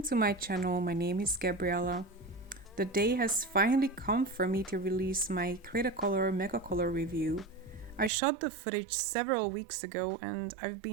to my channel. My name is Gabriella. The day has finally come for me to release my Cretacolor Megacolor review. I shot the footage several weeks ago and I've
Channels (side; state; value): left; drops out; at 8.1 s